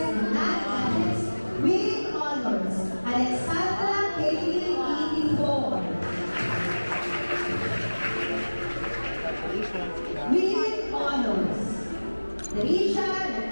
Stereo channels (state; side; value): inverted; both; correlation -1.00